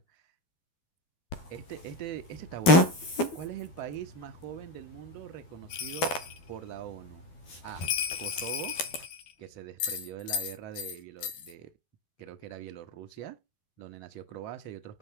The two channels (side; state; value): right; late; 12 ms